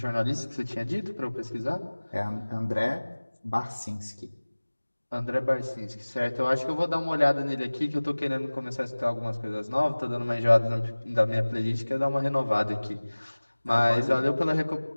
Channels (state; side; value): inverted; both; correlation -1.00